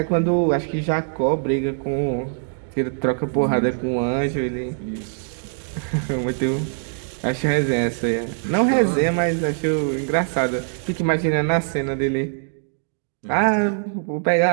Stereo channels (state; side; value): silent; left; 64 dB below the other